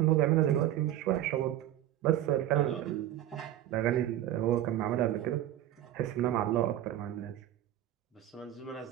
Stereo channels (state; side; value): quieter; left; 12.5 dB